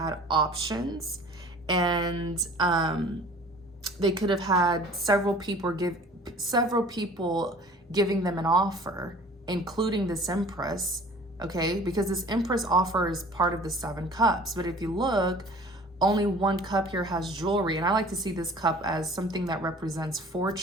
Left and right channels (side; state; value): both; normal; correlation 0.47